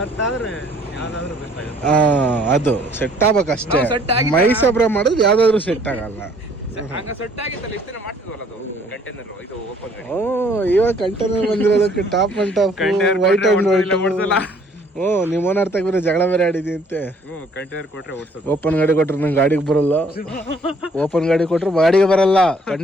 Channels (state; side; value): normal; both; correlation 0.60